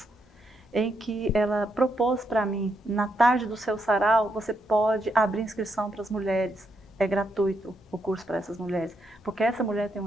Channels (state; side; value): normal; both; correlation 0.79